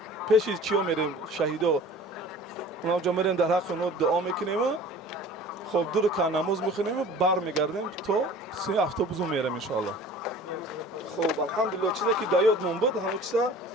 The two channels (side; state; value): both; normal; correlation 0.44